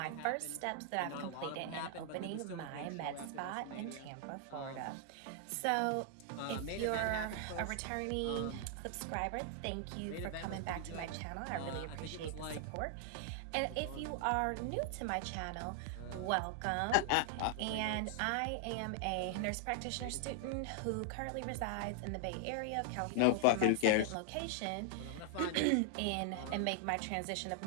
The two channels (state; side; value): different; both; correlation 0.00